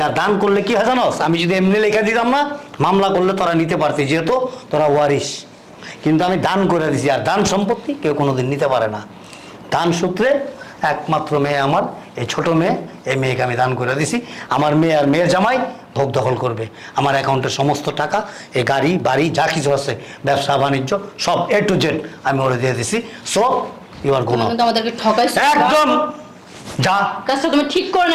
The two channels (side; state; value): both; identical; correlation 1.00